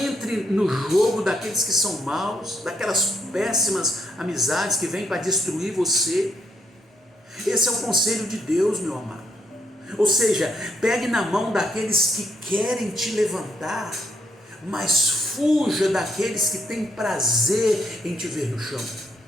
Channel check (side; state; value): both; normal; correlation 0.75